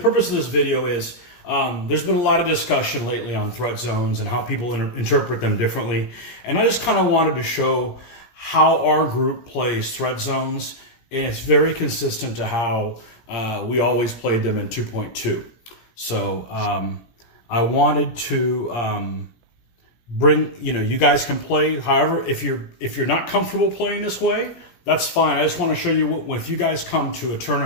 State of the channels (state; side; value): late; right; 17 ms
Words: purpose of this video is there's been a lot of discussion lately on threat zones and how people interpret them differently. And I just kind of wanted to show how our group plays threat zones. And it's very consistent to how we always played them in 2.2. So I wanted to bring, you guys can play. However, if you're not comfortable playing this way, that's fine. I just want to show you what, if you guys come to a